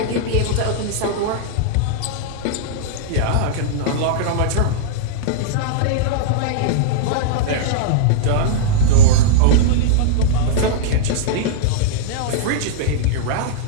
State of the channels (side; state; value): both; different; correlation -0.02